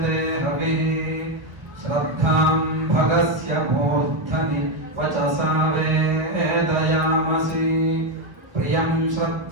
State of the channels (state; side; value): late; left; 1.2 ms